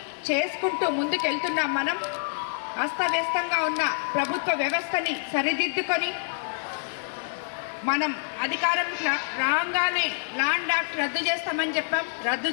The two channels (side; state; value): right; silent; digital silence